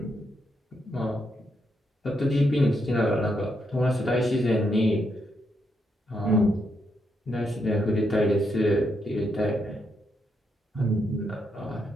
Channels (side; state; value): both; normal; correlation 0.80